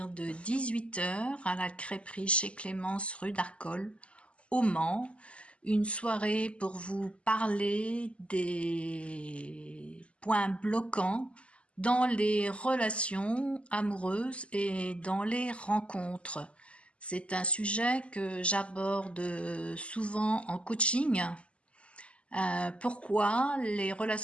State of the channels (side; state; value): right; late; 0.058 ms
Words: de 18 h à la crêperie chez Clémence rue d'Arcole, au Mans. Une soirée pour vous parler des points bloquants dans les relations amoureuses et dans les rencontres. C'est un sujet que j'aborde souvent en coaching. Pourquoi les